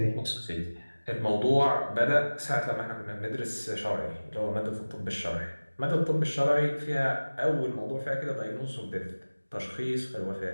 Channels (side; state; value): both; inverted; correlation -1.00